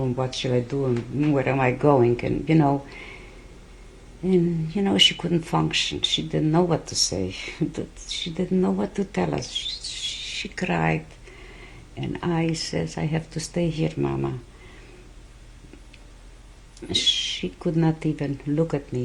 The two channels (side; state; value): both; identical; correlation 1.00